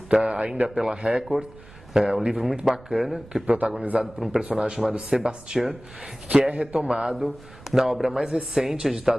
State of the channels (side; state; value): right; noise; rumble, 21 dB below the sound